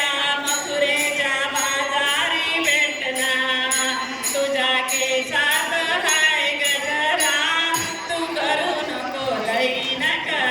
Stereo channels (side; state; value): both; identical; correlation 1.00